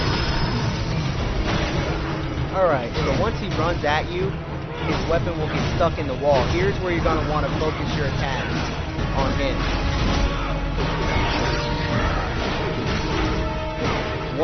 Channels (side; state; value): both; identical; correlation 1.00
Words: Alright, so once he runs at you, his weapon will get stuck in the wall. Here's where you're going to want to focus your attacks on him.